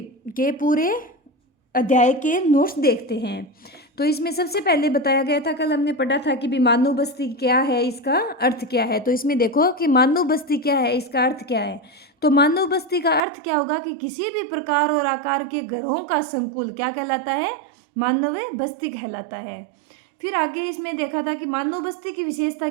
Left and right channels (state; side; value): drops out; left; at 13.2 s